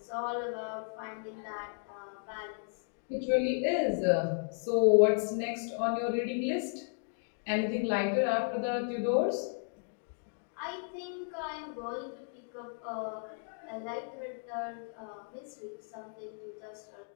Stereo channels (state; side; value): silent; right; 55 dB below the other